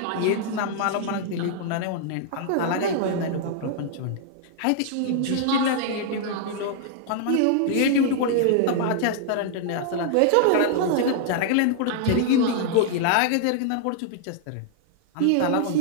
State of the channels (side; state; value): both; different; correlation -0.01